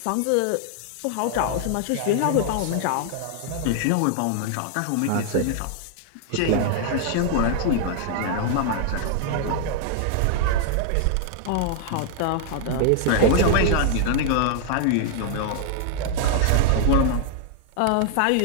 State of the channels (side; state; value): both; different; correlation 0.00